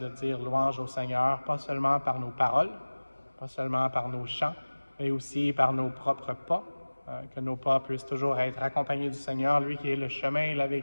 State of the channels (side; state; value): both; inverted; correlation -1.00